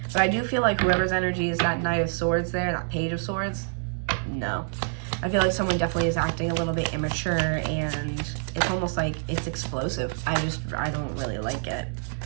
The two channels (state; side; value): silent; left; digital silence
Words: But I do feel like whoever's energy is that Knight of Swords there, that Page of Swords, no. I feel like someone definitely is acting a little bit immature, and it's almost like it's explosive. I don't really like it.